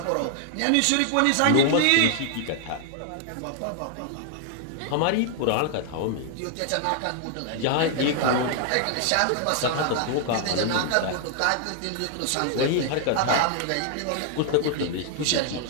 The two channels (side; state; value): both; different; correlation 0.00